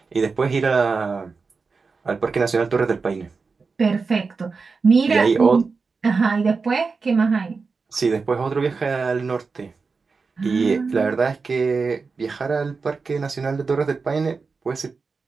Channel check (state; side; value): quieter; left; 4.6 dB